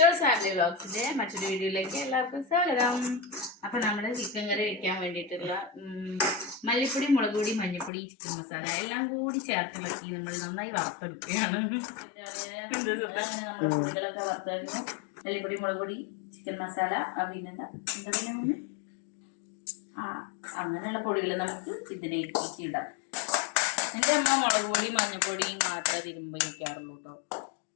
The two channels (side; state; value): right; drops out; at 7.9 s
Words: family വ്ളോഗ്സിന്റെ മറ്റൊരു വീഡിയോയിലേക്ക് എല്ലാവർക്കും സ്വാഗതം. അപ്പൊ നമ്മുടെ ചിക്കൻ കറി വെക്കാൻ വേണ്ടിയിട്ടുള്ള മല്ലിപ്പൊടി, മുളക് പൊടി, മഞ്ഞൾപ്പൊടി, ചിക്കൻ മസാല എല്ലാം കൂടി ചേർത്തിളക്കി നമ്മൾ നന്നായി വറുത്തെടുക്കുകയാണ്. നമ്മുടെ പൊടികളൊക്കെ വറുത്തായിരുന്നു. മല്ലിപ്പൊടി, മുളക് പൊടി, ചിക്കൻ മസാല, പിന്നെന്താ അങ്ങനെയുള്ള പൊടികൾ നമുക്ക് ഇതിലേക്ക് ഇടാം. എൻ്റെ അമ്മ മുളക് പൊടി, മഞ്ഞൾപ്പൊടി മാത്രമേ തിരുമ്പ് വയ്ക്കാറുള്ളൂ കേട്ടോ.